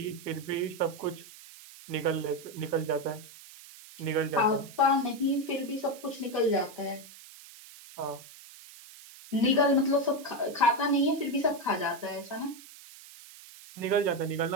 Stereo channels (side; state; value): right; noise; hiss, 18 dB below the sound